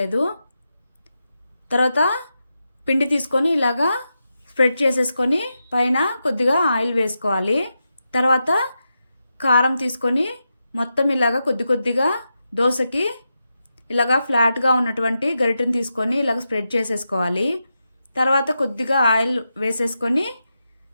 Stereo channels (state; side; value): inverted; both; correlation -0.88